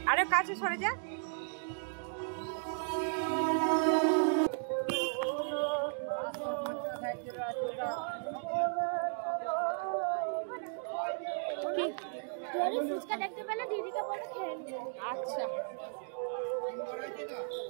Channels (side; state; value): left; silent; digital silence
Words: আরে কাছে সরে যা। ফুচকা দেখতে পেলে দিদিকে বলে খেয়ে নিও। আচ্ছা